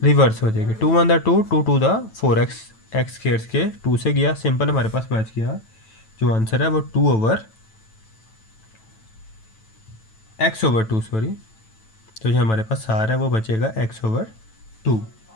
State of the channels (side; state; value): right; late; 9.1 ms